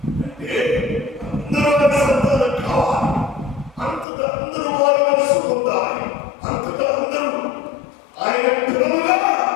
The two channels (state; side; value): drops out; right; at 4.0 s